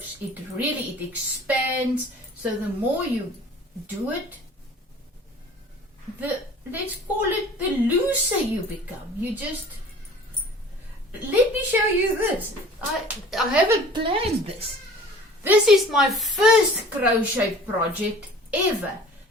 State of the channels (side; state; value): both; normal; correlation 0.46